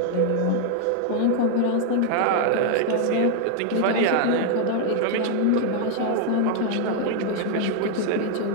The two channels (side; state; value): both; different; correlation 0.00